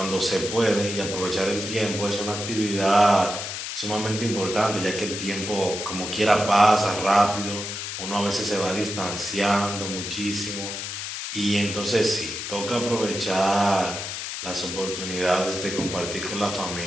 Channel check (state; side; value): noise; left; hiss, 6 dB below the sound